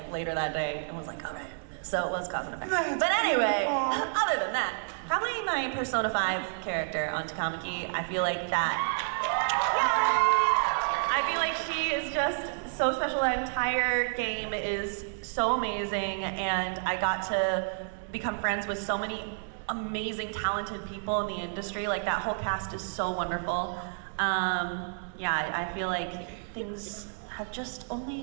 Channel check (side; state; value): left; silent; 58 dB below the other